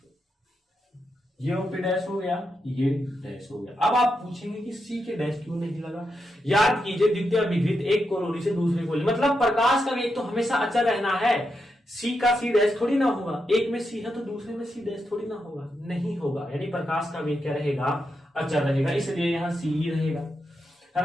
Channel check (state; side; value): normal; both; correlation 0.85